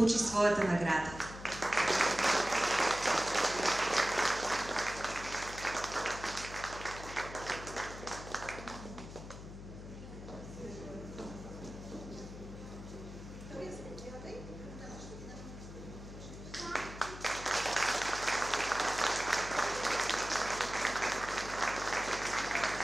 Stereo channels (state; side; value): noise; left; hum, 12 dB below the sound